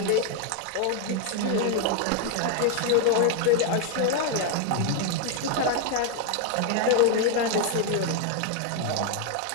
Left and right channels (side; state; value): both; different; correlation 0.00